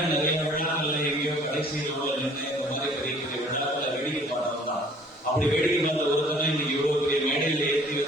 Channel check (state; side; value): normal; both; correlation 0.55